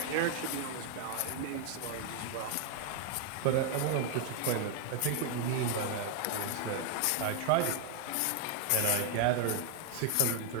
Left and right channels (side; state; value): both; different; correlation 0.00